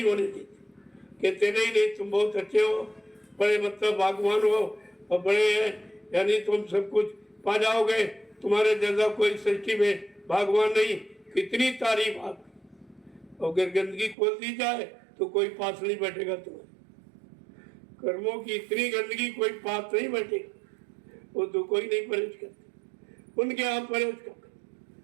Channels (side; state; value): left; drops out; at 14.2 s